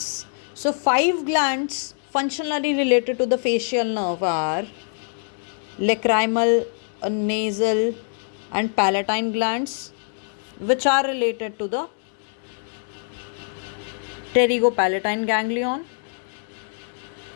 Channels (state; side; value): silent; right; 63 dB below the other